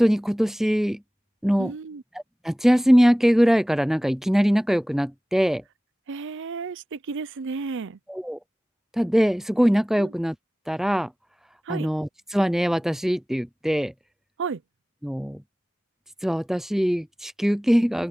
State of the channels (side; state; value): both; normal; correlation 0.97